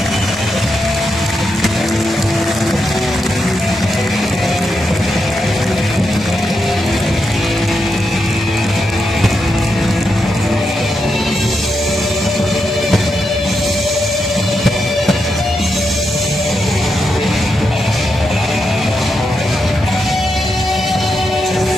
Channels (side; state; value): both; normal; correlation 0.84